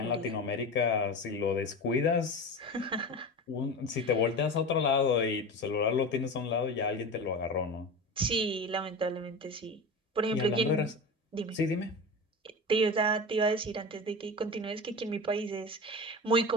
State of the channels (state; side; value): normal; both; correlation 0.28